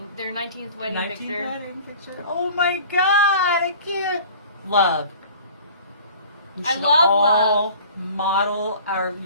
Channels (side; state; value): both; inverted; correlation -0.45